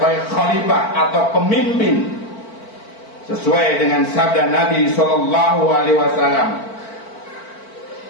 khalifah atau pemimpin, sesuai dengan sabda Nabi sallallahu alaihi wasallam,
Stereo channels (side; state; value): right; late; 4.5 ms